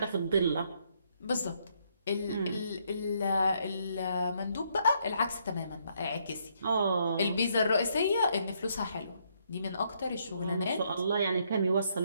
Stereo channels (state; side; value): inverted; both; correlation -0.72